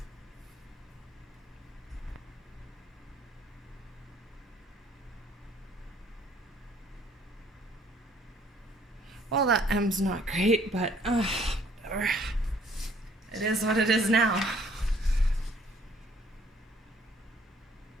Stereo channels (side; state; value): both; normal; correlation 0.61